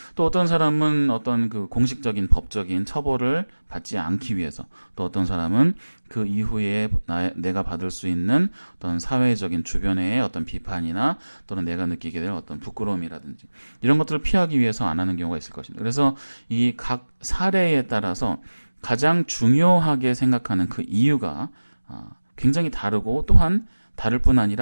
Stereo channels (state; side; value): inverted; both; correlation -1.00